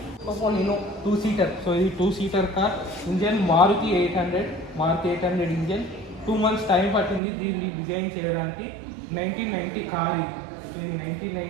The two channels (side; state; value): left; drops out; at 7.2 s